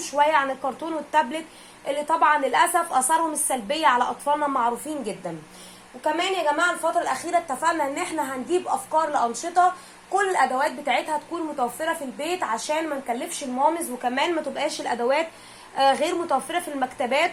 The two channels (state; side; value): identical; both; correlation 1.00